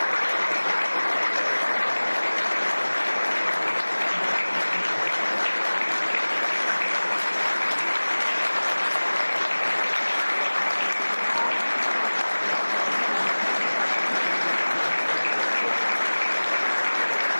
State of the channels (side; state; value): both; inverted; correlation -1.00